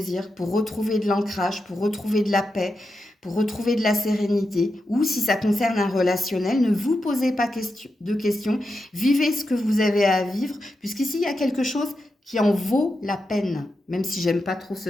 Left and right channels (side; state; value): both; normal; correlation 0.88